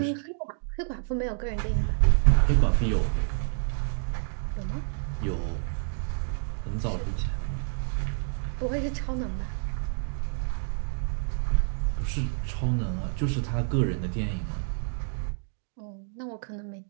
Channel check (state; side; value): silent; left; 59 dB below the other